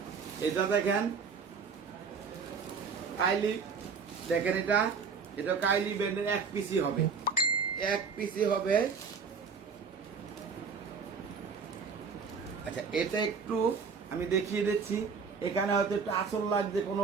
এটা দেখেন কাইলি, দেখেন এটা কাইলি ব্র্যান্ডের 1 পিসই হবে, 1 পিসই হবে। আচ্ছা, এটা একটু আমি দেখিয়ে দিচ্ছি। এখানে হয়তো একটু আঁচল লাগছে,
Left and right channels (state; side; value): quieter; left; 5.6 dB